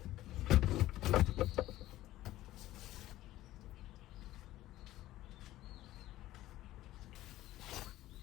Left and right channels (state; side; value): quieter; right; 15.3 dB